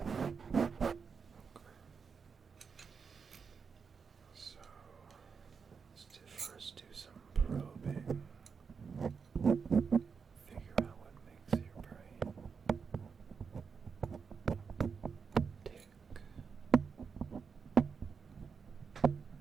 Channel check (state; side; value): quieter; left; 5.8 dB